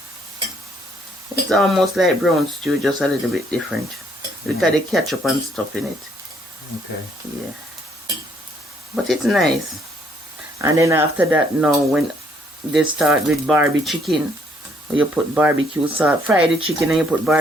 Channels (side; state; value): both; normal; correlation 0.67